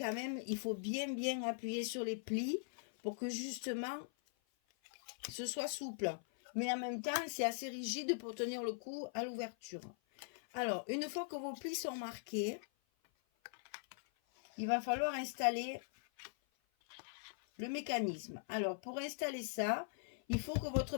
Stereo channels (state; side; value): silent; right; 50 dB below the other